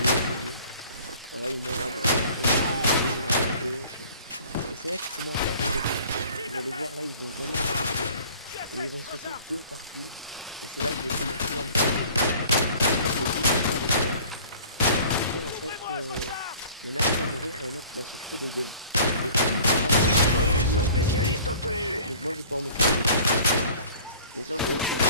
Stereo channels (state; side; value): inverted; both; correlation -0.48